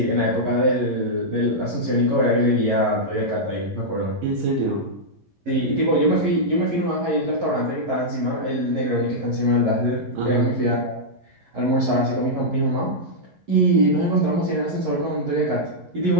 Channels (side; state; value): left; late; 11 ms